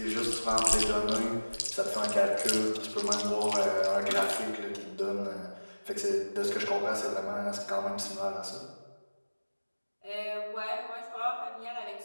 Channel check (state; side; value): inverted; both; correlation -1.00